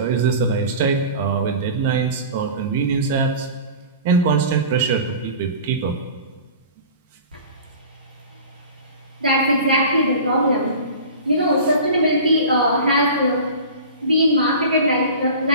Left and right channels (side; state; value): both; inverted; correlation -0.37